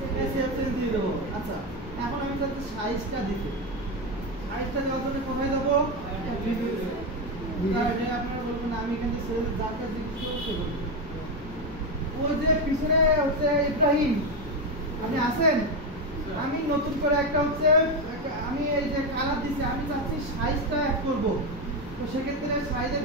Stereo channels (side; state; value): both; normal; correlation 0.11